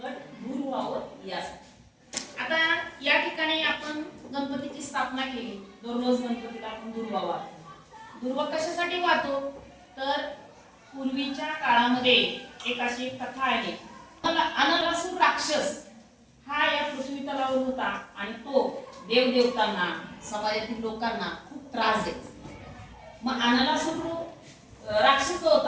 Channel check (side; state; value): both; identical; correlation 1.00